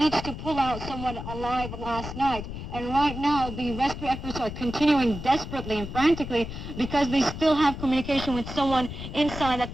to pull out someone alive last night. And right now, the rescue efforts are continuing desperately and frantically because they still have communication with someone inside that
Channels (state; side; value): noise; left; rumble, 8 dB below the sound